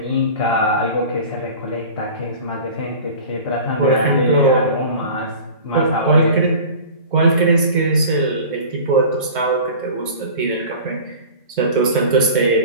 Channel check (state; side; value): inverted; both; correlation -0.39